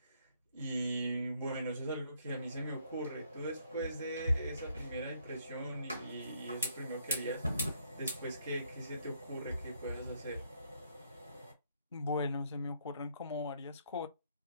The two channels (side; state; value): both; inverted; correlation -0.69